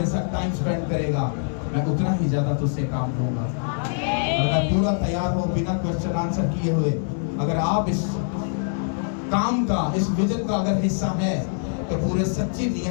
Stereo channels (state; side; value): silent; right; digital silence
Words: साथ टाइम स्पेंड करेगा, मैं उतना ही ज्यादा तुझसे काम लूंगा। और मैं पूरा तैयार हूँ बिना क्वेश्चन आंसर किए हुए। अगर आप इस काम का, इस विजन का अगर हिस्सा है, तो पूरे सच्ची